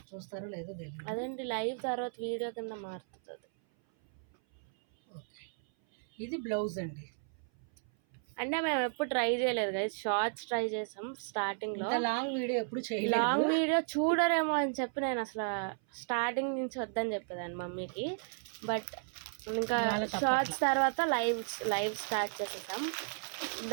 చూస్తారో లేదో తెలియదు. అదేంటి లైవ్ తర్వాత వీడియో కింద మారుతుంది. ఓకే, ఇది బ్లౌజ్ అండి. అంటే మేము ఎప్పుడు ట్రై చేయలేదు గైస్, షార్ట్స్ ట్రై చేసాం స్టార్టింగ్లో. లాంగ్ వీడియో ఎప్పుడు చేయలేదు. లాంగ్ వీడియో చూడరేమో అని చెప్పి నేను అసలు స్టార్టింగ్ నుంచి వద్దని చెప్పేదాన్ని మమ్మీకి. బట్ ఇంకా షార్ట్స్ తర్వాత లైవ్ స్టార్ట్ చేసేసాం.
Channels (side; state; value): left; silent; 55 dB below the other